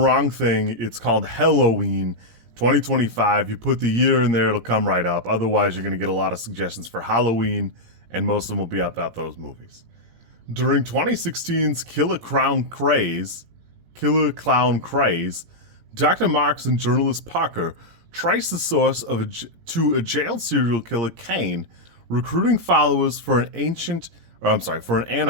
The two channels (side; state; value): left; late; 17 ms